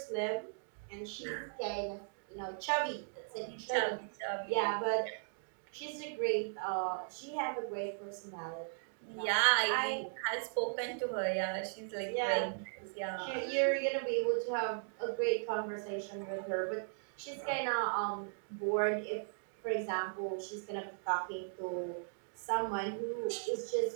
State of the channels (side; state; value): left; silent; digital silence